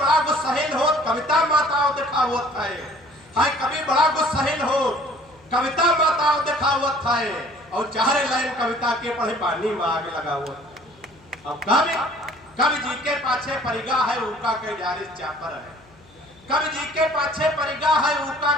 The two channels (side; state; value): left; noise; hum, 28 dB below the sound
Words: गुस्साहिल हो, कविता माताओं दिखावत है। कभी बड़ा गुस्साहिल हो, कविता माताओं दिखावत है। और 4 लाइन कविता के पढ़े पानी में आग लगा हुआ। अब कवि जी के पाछे परिगा है, उनका कई जारिस चापर है। कवि जी के पाछे परिगा है, उनका